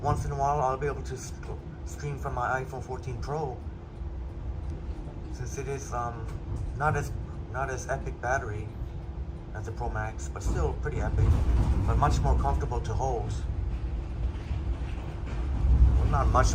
once in a while I'll be able to stream from my iPhone 14 Pro. Since it is not as epic battery as the Pro Max, but still pretty epic, but much more comfortable to hold. Not much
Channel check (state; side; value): identical; both; correlation 1.00